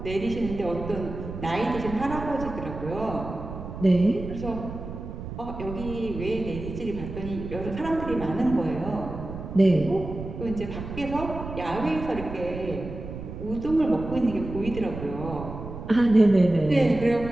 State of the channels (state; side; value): noise; right; rumble, 9 dB below the sound